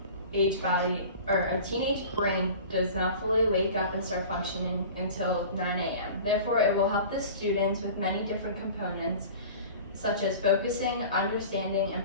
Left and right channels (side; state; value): both; inverted; correlation -0.40